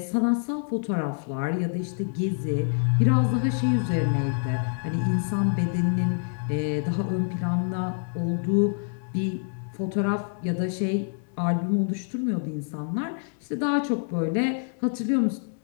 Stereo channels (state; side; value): silent; right; 61 dB below the other